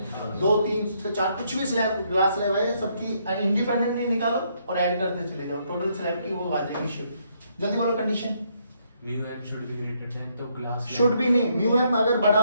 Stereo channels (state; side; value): inverted; both; correlation -0.72